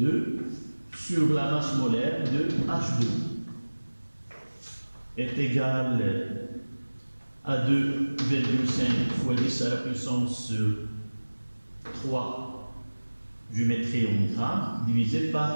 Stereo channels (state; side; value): inverted; both; correlation -1.00